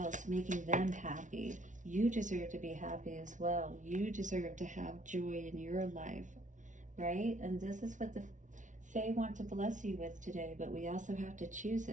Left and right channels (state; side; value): late; left; 0.37 ms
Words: making them happy. You deserve to be happy as well. You deserve to have joy in your life, right? And this is what the Fae want to bless you with today, but we also have to choose